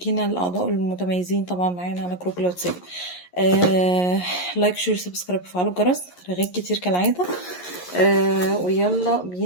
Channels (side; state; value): right; late; 11 ms